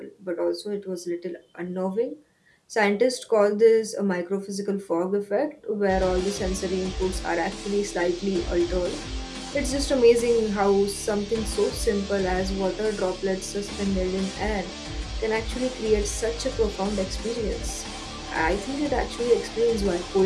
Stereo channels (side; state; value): both; identical; correlation 1.00